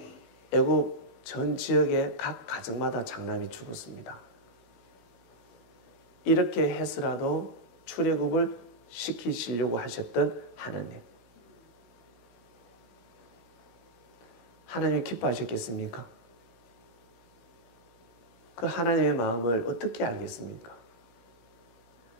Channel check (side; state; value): right; late; 16 ms